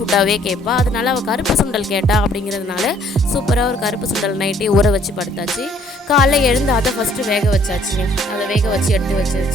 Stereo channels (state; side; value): normal; both; correlation 0.62